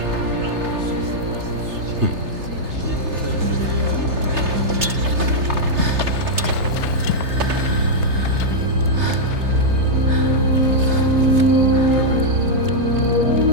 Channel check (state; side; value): late; left; 3.3 ms